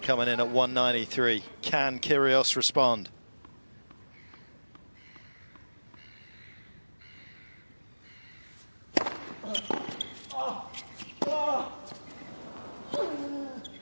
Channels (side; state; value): both; inverted; correlation -1.00